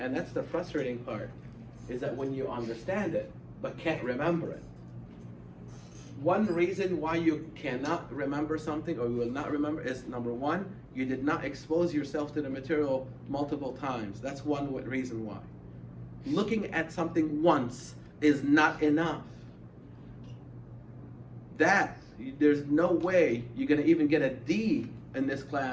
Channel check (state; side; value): identical; both; correlation 1.00